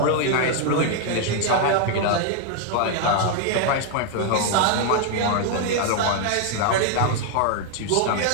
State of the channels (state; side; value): different; both; correlation 0.00